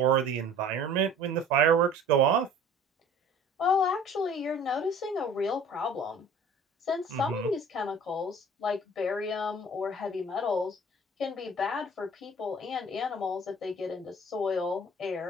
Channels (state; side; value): normal; both; correlation 0.48